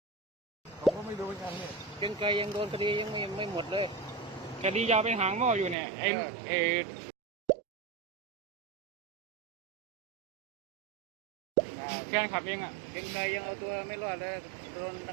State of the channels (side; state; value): left; drops out; at 5.8 s